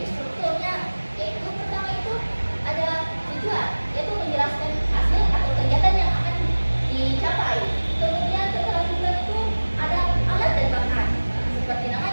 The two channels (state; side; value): inverted; both; correlation -1.00